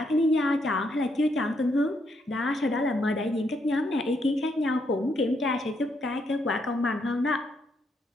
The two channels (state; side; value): normal; both; correlation 0.76